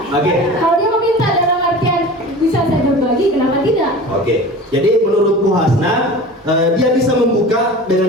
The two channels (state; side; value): normal; both; correlation 0.37